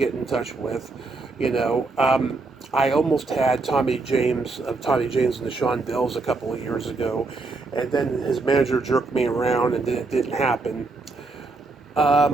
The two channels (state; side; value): quieter; left; 3.6 dB